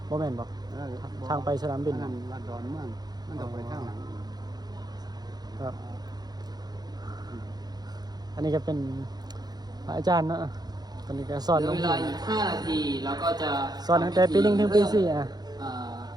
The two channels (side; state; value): left; late; 0.19 ms